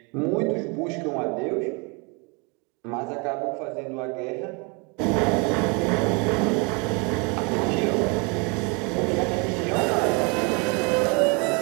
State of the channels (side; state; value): left; quieter; 31.5 dB